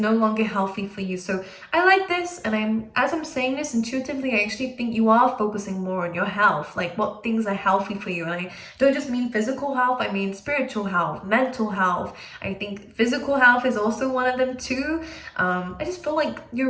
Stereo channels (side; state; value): both; identical; correlation 1.00